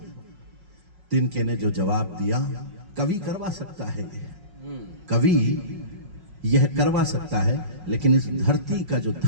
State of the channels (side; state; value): left; late; 5.4 ms